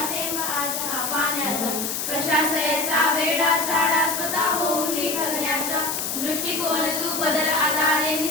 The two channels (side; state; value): left; noise; hiss, 2 dB below the sound